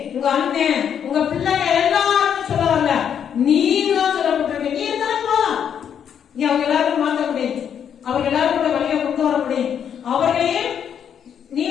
உங்க அண்ணன், உங்க பிள்ளைங்க எல்லாரும் சொல்ல வரல, நீங்க சொல்லப்பட்டிருக்க. நீ இருந்தாலும் நீ அவங்க எல்லாரும் மாற்ற முடியும், அவங்க எல்லாரும் கூட வழியை கொண்டு வர முடியும். அவர்களையும் நீ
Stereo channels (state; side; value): quieter; right; 8.4 dB